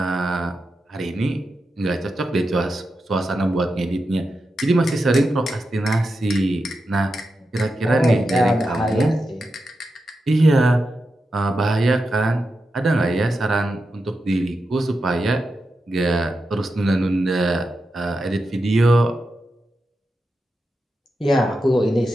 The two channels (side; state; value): both; normal; correlation 0.89